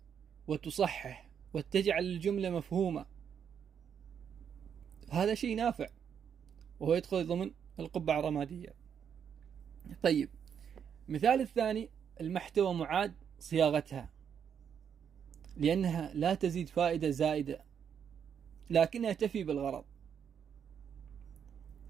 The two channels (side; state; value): left; quieter; 7.9 dB